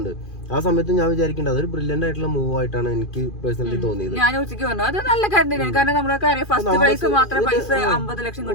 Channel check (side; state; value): right; late; 2.4 ms